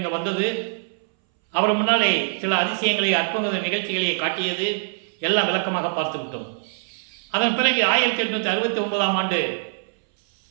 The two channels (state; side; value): silent; left; 61 dB below the other